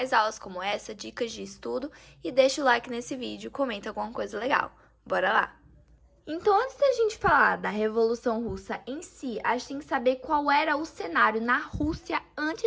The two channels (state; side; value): identical; both; correlation 1.00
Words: aulas como essa, dicas de estudo, e deixa o like nesse vídeo, comenta alguma coisa legal. Bora lá! Então, antes da gente falar da Revolução Russa em si, a gente tem que saber qual era o cenário na Rússia